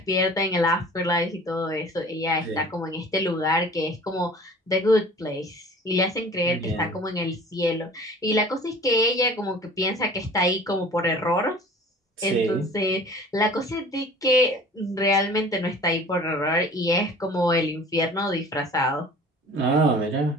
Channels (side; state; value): both; normal; correlation 0.46